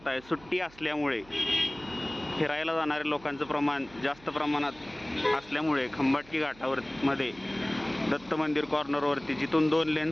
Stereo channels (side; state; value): right; noise; hum, 23 dB below the sound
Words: सुट्टी असल्यामुळे फिरायला जाणाऱ्या लोकांचं प्रमाण जास्त प्रमाणात असल्यामुळे खंबाटकी घाटावर मध्ये दत्त मंदिर कॉर्नरवरती जिथून 2 लेन